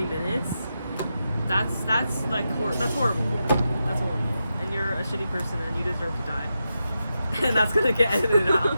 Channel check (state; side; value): inverted; both; correlation -0.88